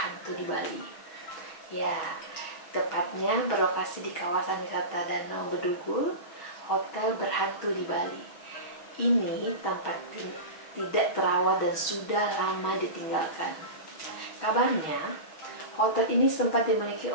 di Bali. Ya, tepatnya berlokasi di kawasan wisata Danau Bedugul, hotel berhantu di Bali. Ini tampak tidak terawat dan sudah lama ditinggalkan. Kabarnya, hotel ini sempat dimiliki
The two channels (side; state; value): right; late; 6.2 ms